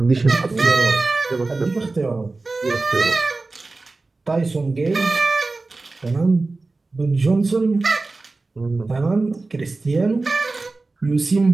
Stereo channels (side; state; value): left; quieter; 3.5 dB